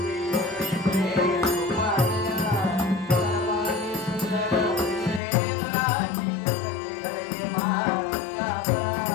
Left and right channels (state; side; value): drops out; right; at 5.2 s